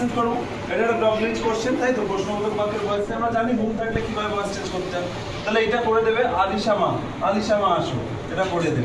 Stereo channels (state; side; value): identical; both; correlation 1.00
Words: করব এটা একটা ডগলিঞ্চ কোশ্চেন তাই তো প্রশ্নবোধক বাক্যের ভয়েস আমরা জানি whom থাকলে কিভাবে ভয়েস চেঞ্জ করতে হয় তাহলে এটা করে দেবে আলিশা মা আসো এটা করে